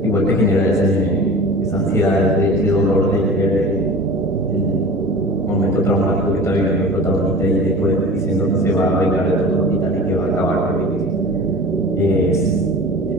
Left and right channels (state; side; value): normal; both; correlation 0.38